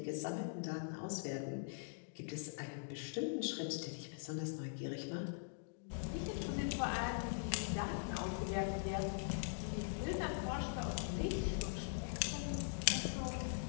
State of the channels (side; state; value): right; silent; digital silence